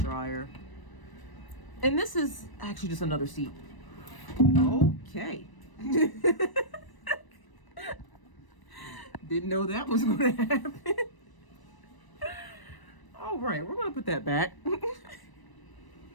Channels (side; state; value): right; late; 1.0 ms